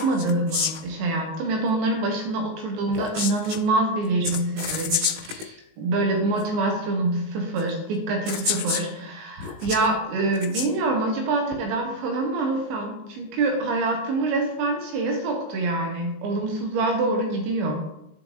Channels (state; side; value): late; left; 19 ms